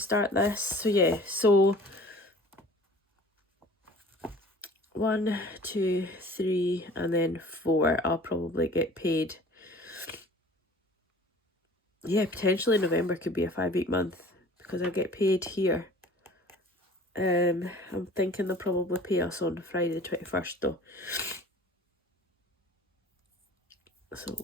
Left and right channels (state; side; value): normal; both; correlation 0.46